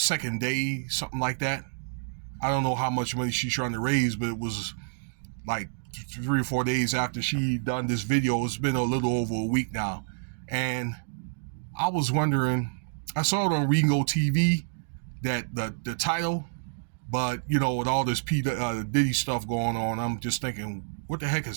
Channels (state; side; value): silent; left; digital silence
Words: day, something like that. I don't know how much money she's trying to raise, but it was like 3 or 4 days after she done this video. It's been a little over a week now. And I was wondering, I saw it on Ringo TV, that the title, but with all this Diddy stuff going on, I'm just thinking, who the heck